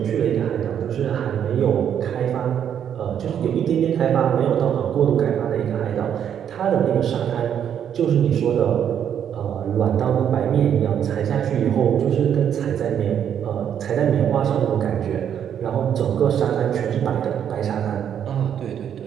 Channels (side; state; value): left; quieter; 9.0 dB